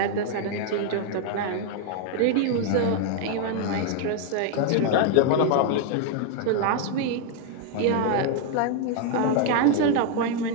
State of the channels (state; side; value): different; both; correlation 0.00